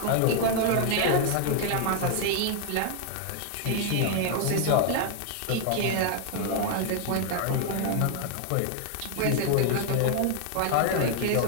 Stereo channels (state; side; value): different; both; correlation 0.00